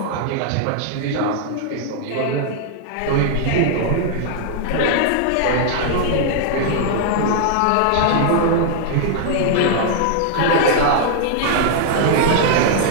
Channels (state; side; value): different; both; correlation -0.01